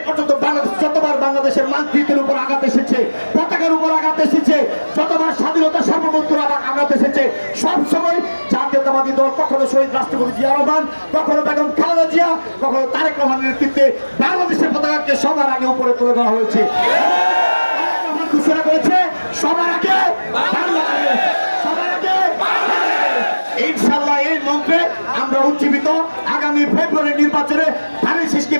পর্যন্ত বাংলাদেশ যতবার বাংলাদেশের মানচিত্রের উপর আঘাত এসেছে, পতাকার উপর আঘাত এসেছে, যতবার স্বাধীনতা সার্বভৌমত্বের আঘাত এসেছে, সবসময় জাতীয়তাবাদী দল কখনো শহীদ রাষ্ট্রপতি জিয়া রহমান, কখনো বেগম খালেদা জিয়া, কখনো তারেক রহমানের নেতৃত্বে বাংলাদেশের পতাকাকে সবার আগে উপরে তুলে ধরা হয়েছে। ঘোষণা করেছে সবার আগে বাংলাদেশ, সবার আগে ইনশাআল্লাহ। এই মন্ত্রে আমরা উজ্জীবিত আগামী ফেব্রুয়ারি নির্বাচনে ধানের শীষকে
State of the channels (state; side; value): inverted; both; correlation -1.00